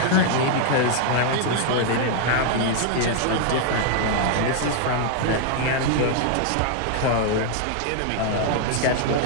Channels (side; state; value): both; different; correlation 0.00